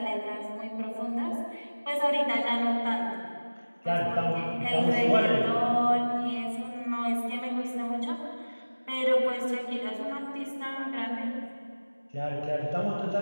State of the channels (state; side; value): inverted; both; correlation -1.00